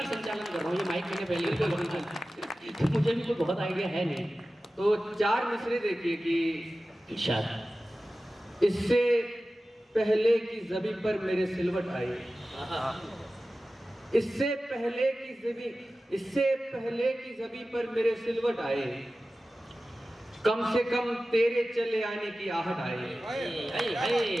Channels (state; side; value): normal; both; correlation 0.95